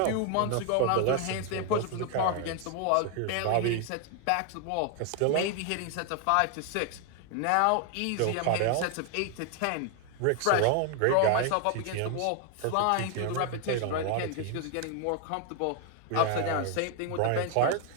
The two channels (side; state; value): both; different; correlation 0.00